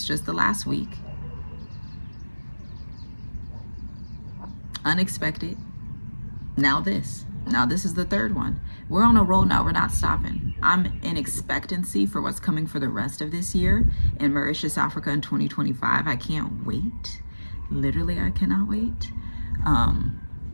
just the last week. Unexpected. Now this is the third one. We're on a roll now. We're not stopping. I'm in expectancy for what's coming for the rest of this year in Mauritius, Africa in 2025. I can't wait. Literally, I cannot wait.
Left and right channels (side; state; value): both; inverted; correlation -1.00